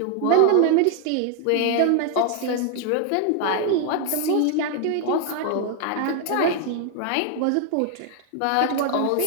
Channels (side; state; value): both; different; correlation 0.00